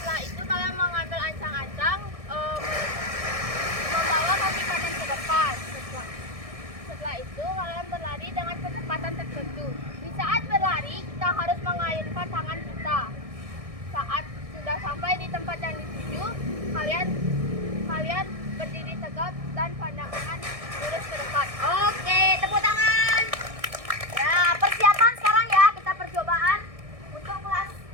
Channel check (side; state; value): left; late; 1.6 ms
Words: itu kalian mengambil ancang-ancang membawa kaki kanan ke depan. Setelah itu kalian berlari dengan kecepatan tertentu. Di saat berlari kita harus mengayunkan tangan kita. Saat sudah sampai di tempat yang dituju, kalian berdiri tegak dan pandangan lurus ke depan. Oke, tepuk tangan. Ya, persiapan sekarang ya, kita percobaan untuk